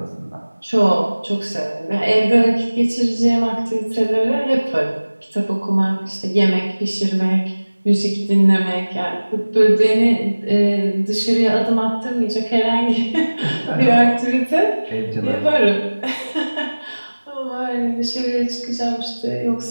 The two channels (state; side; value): inverted; both; correlation -1.00